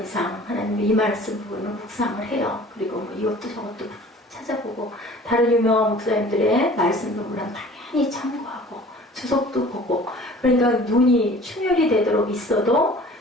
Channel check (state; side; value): normal; both; correlation 0.47